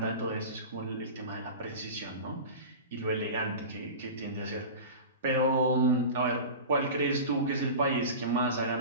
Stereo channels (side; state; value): both; inverted; correlation -0.31